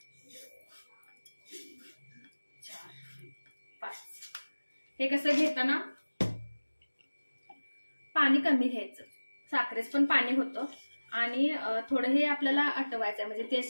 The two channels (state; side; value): inverted; both; correlation -1.00